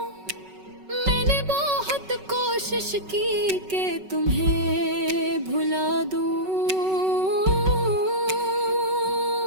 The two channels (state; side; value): late; left; 5.3 ms